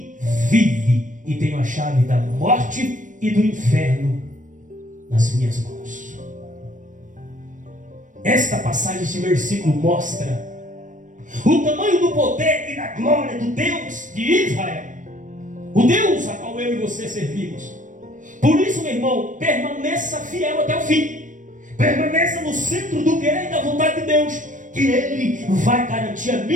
vive, e tenho a chave da morte e do inferno nas minhas mãos. Esta passagem, este versículo mostra o tamanho do poder e da glória do Deus de Israel, o Deus a qual eu e você servimos. Por isso, meu irmão, permaneça fiel até o fim. Permaneça no centro do querer e da vontade de Deus, que Ele vai garantir a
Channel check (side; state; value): left; late; 0.37 ms